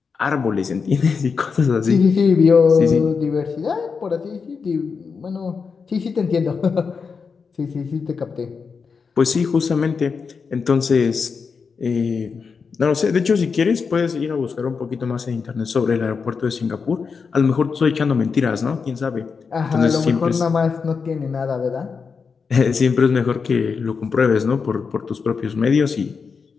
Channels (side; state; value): right; quieter; 5.4 dB